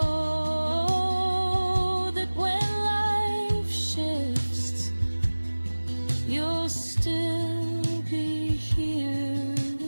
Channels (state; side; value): inverted; both; correlation -1.00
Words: that when life shifts, you'll still be here